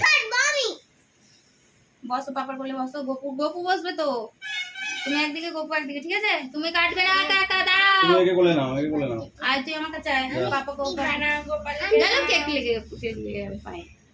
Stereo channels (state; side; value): identical; both; correlation 1.00